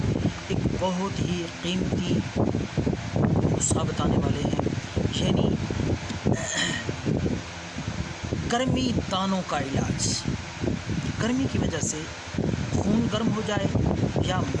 ایک بہت ہی قیمتی نسخہ بتانے والے ہیں، یعنی گرمی دانوں کا علاج۔ گرمی کی وجہ سے خون گرم ہو جائے یا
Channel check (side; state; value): both; identical; correlation 1.00